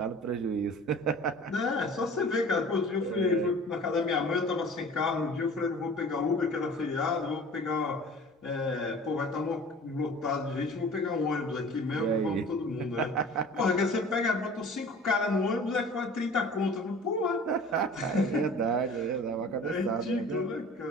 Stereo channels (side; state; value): both; normal; correlation 0.44